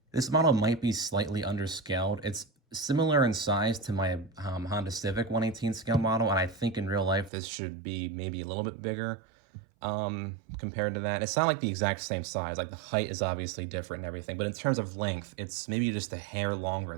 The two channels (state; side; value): drops out; left; at 7.3 s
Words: This model might be slightly underscaled. It's similar in size to my Honda Civic 1/18 scale model, and I think in real life this should be maybe a little bit bigger compared to that. It's not like the exact same size. Like the height is obviously different and everything, but in terms of length, it's maybe just a hair longer